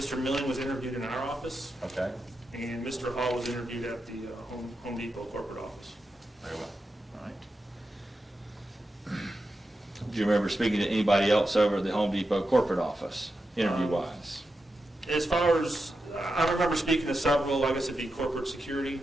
Milling was interviewed in our office, Okay, and Mr. Hall was interviewed at the Home Depot corporate office. very well. All right. Do you remember speaking to anybody else over at the Home Depot corporate office, interview-wise? As far as, I remember speaking to several, I guess it'd be corporate security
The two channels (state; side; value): normal; both; correlation 0.88